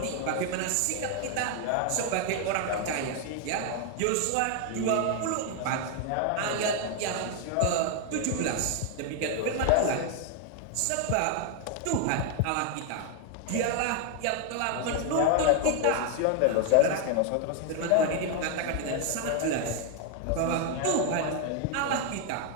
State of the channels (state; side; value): different; both; correlation 0.00